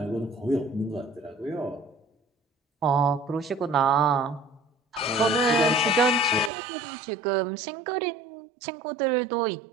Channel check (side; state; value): left; drops out; at 6.5 s